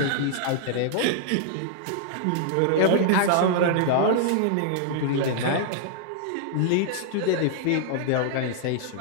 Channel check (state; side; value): different; both; correlation -0.01